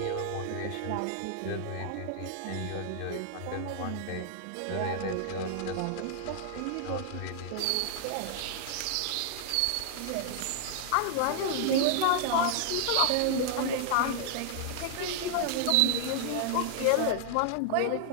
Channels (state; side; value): different; both; correlation 0.00